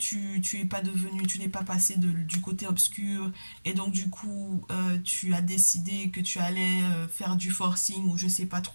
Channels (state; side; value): inverted; both; correlation -1.00